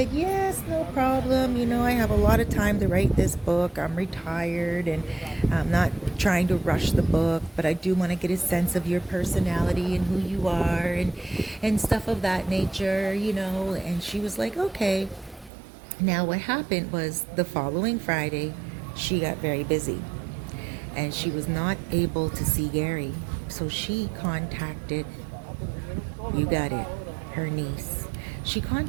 "Yes, no problem. I have a lot of time to write this book. I'm retired, and I'm not trying to rush the book, but I do want to get a sense of your personality and who you are, and stuff of that nature, And she was like, "Okay." Now what happened was, the following Friday, she got very busy, and she was not able to see Gary. So she contacted, you got it, her niece. She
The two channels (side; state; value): left; drops out; at 15.5 s